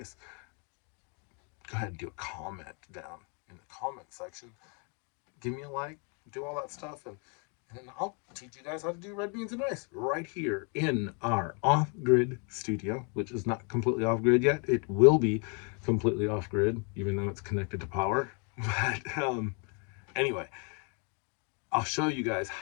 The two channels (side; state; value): right; quieter; 36.6 dB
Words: go ahead and do a comment down in the comment section. Give me a like, do all that stuff, and I'll teach you guys how to do red beans and rice right here in our off grid studio, which is not completely off grid yet. It will be completely off grid, even though it's connected to power. But anyway, I'll show you guys